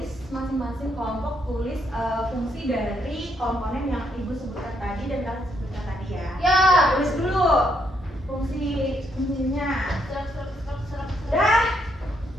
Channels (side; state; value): both; normal; correlation 0.74